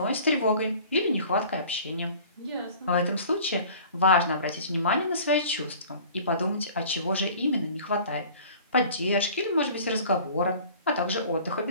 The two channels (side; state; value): both; inverted; correlation -0.46